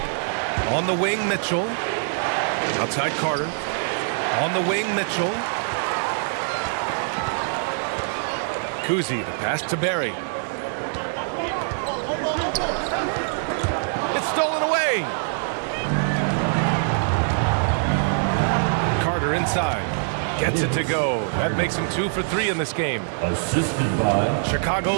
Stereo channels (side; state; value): left; silent; 63 dB below the other